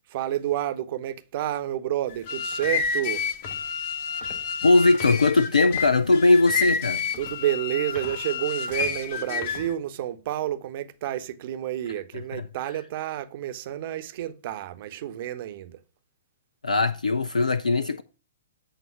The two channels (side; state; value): both; inverted; correlation -0.67